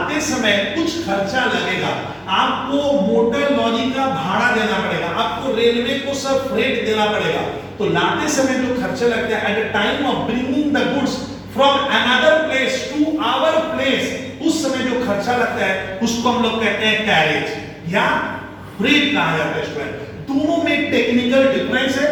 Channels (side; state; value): both; identical; correlation 1.00